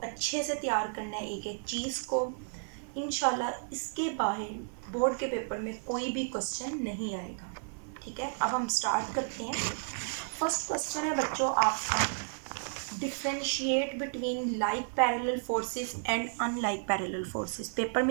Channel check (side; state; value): left; silent; digital silence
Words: अच्छे से तैयार करना है एक एक चीज़ को। इंशाल्लाह इसके बाहर बोर्ड के पेपर में कोई भी क्वेश्चन नहीं आएगा। ठीक है, अब हम स्टार्ट करते हैं। फर्स्ट क्वेश्चन है बच्चों आपका, differentiate between like parallel forces and unlike parallel forces. Paper